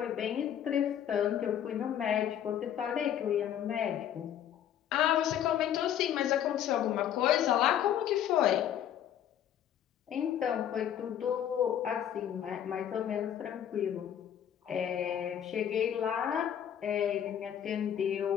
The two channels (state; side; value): quieter; right; 10.0 dB